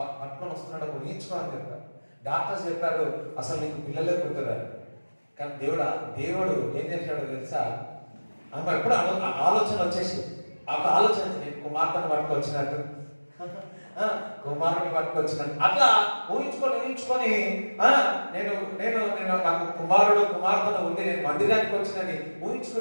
పట్టుకొని వస్తున్నాడు, ఊహించుకో అని చెప్పారు. డాక్టర్స్ చెప్పారు అసలు నీకు పిల్లలే పుట్టరారు. కానీ దేవుడు ఏం చేశాడో తెలుసా? ఆమె ఎప్పుడు ఆలోచన వచ్చేసి, ఒక ఆలోచన, నేను కుమార్తెను పట్టుకొచ్చినట్టు, కుమారుని పట్టుకొచ్చినట్టు అట్లా ఊహించుకొని నేను నాకు కుమార్తెను ఉంది, నేను మందిరానికి వచ్చినని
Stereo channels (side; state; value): both; inverted; correlation -1.00